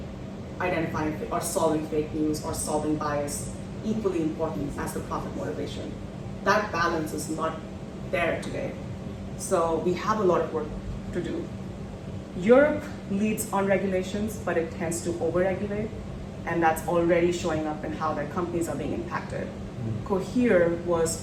identifying or solving fake news or solving bias equally important as the profit motivation. That balance is not there today. So we have a lot of work to do. Europe leads on regulations, but it tends to over-regulate, and that's already showing up in how their companies are being impacted. Cohere was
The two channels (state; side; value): identical; both; correlation 1.00